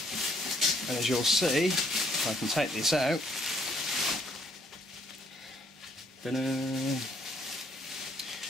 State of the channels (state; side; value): normal; both; correlation 0.66